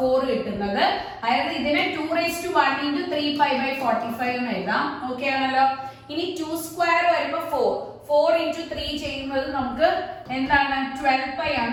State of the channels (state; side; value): identical; both; correlation 1.00